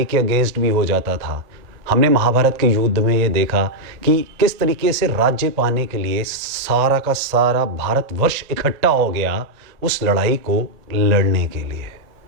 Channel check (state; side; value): late; left; 1.8 ms